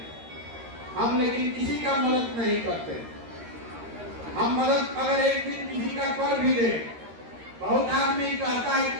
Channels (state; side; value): late; left; 13 ms